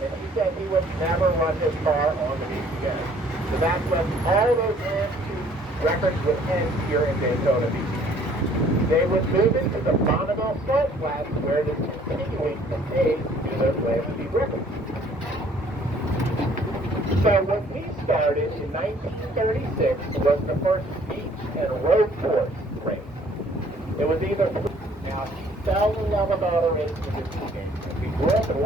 and he said he would never run his car on the beach again. So that's when all those land records would end here in Daytona Beach. They would move into the Bonneville Salt Flats where it is continuing to pay to do those land speed records. So when we started in 1936 was the first beach and road course race. It was either now he fell in love with auto racing as a teenager. We grew up in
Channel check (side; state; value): both; normal; correlation 0.58